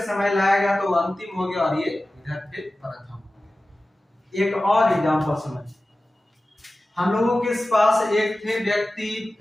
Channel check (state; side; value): normal; both; correlation 0.96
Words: समय लाया गया, तो अंतिम हो गया और ये इधर फिर प्रथम हो गया। एक और एग्जांपल समझिए, हम लोगों के पास एक थे व्यक्ति